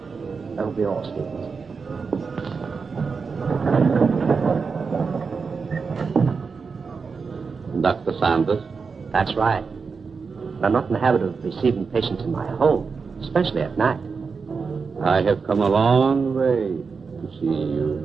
that'll be all, Stevens. Dr. Sanders? That's right. But I'm not in the habit of receiving patients in my home, especially at night. I have come a long way to see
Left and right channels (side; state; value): left; quieter; 5.1 dB